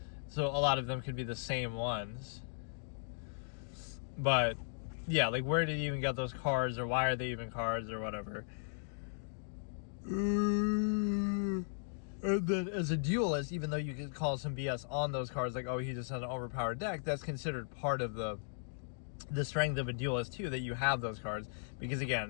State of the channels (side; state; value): right; silent; digital silence